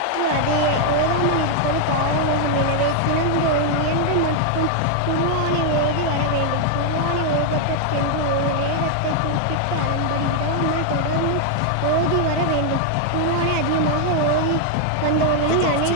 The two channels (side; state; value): both; different; correlation 0.00